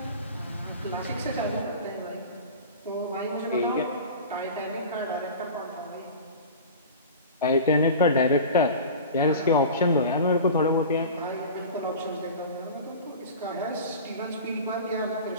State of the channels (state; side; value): inverted; both; correlation -0.35